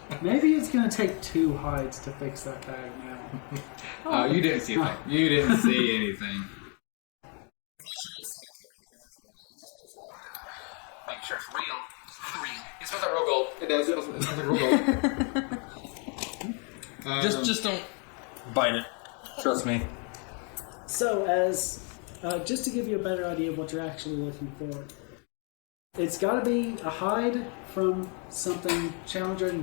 Maybe it's gonna take 2 hides to fix that bag now. You didn't see anything. You didn't see anything. Make sure it's real. It smells like real gold. It does. It smells like real gold. Just don't bite it. Trust me. So, as just to give you a better idea of what you're actually looking for, it's got to be a hide from something challenge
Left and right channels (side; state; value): right; quieter; 36.8 dB